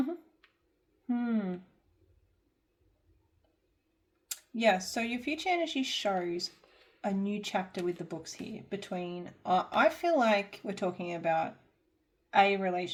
Yeah, so your future energy shows a new chapter with the books here between, I feel like we're talking about a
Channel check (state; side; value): identical; both; correlation 1.00